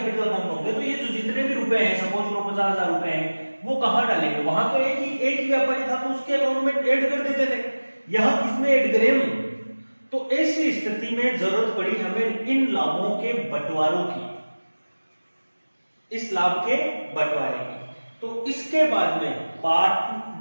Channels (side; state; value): both; inverted; correlation -1.00